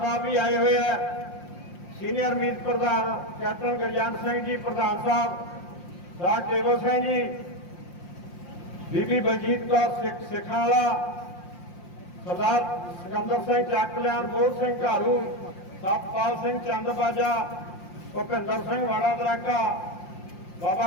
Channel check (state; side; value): late; right; 5.7 ms